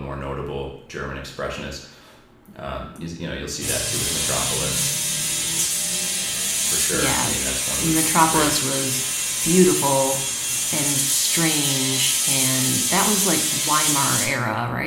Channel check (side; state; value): both; identical; correlation 1.00